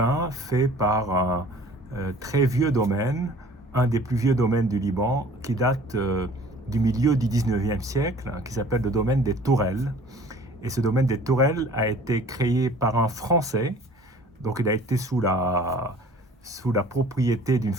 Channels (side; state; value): both; normal; correlation 0.49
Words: fait par un très vieux domaine, un des plus vieux domaines du Liban, qui date du milieu du 19e siècle, hein, qui s'appelle le domaine des Tourelles. Et ce domaine des Tourelles a été créé par un Français, donc il a été sous la propriété d'une